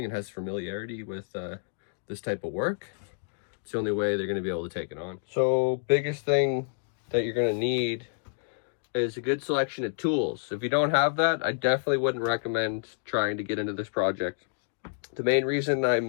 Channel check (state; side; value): silent; right; digital silence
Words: and has familiarity with this type of work, it's the only way they're going to be able to take it on. So biggest thing that you're going to need is a good selection of tools. If you don't have that, I definitely wouldn't recommend trying to get into this project. The main reason